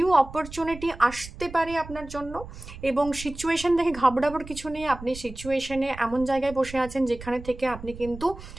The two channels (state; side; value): noise; right; rumble, 14 dB below the sound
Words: অপরচুনিটি আসতে পারে আপনার জন্য, এবং সিচুয়েশন দেখে ঘাবড়াবার কিছু নেই। আপনি সিচুয়েশনে এমন জায়গায় বসে আছেন যেখানে থেকে আপনি কিন্তু